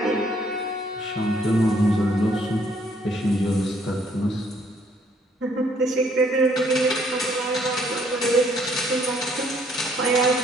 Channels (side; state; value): both; normal; correlation 0.66